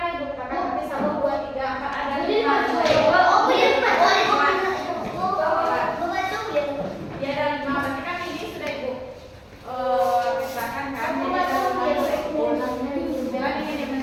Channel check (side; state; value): both; identical; correlation 1.00